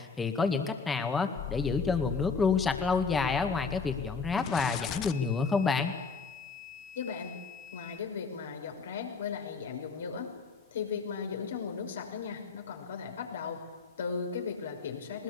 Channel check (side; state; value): right; quieter; 4.9 dB